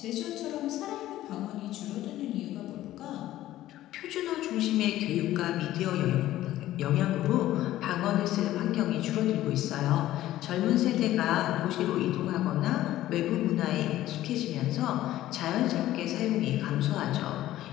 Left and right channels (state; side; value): quieter; right; 14.4 dB